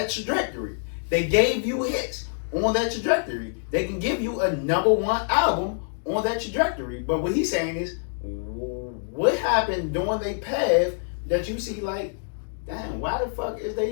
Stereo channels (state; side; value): silent; right; digital silence